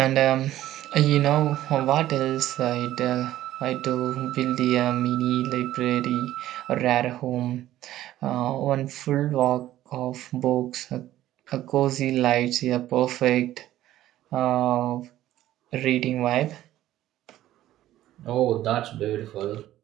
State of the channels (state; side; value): quieter; left; 13.9 dB